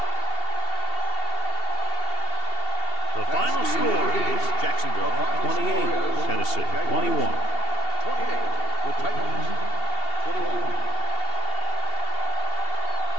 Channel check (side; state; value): right; late; 2.7 ms